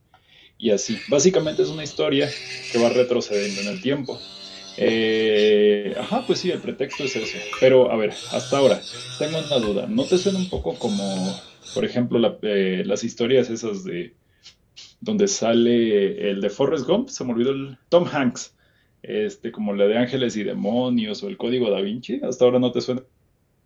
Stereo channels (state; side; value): identical; both; correlation 1.00